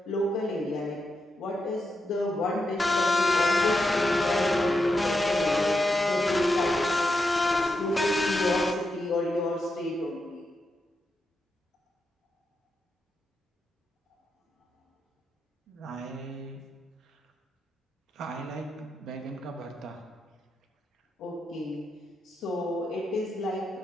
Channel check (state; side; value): normal; both; correlation 0.85